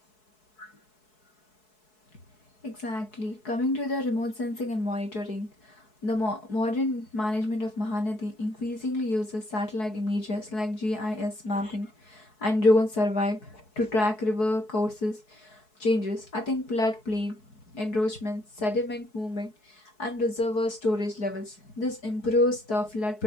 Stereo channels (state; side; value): late; right; 4.7 ms